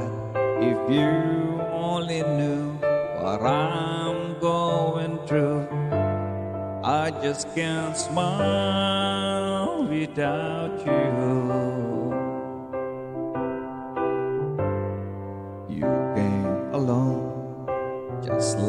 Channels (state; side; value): identical; both; correlation 1.00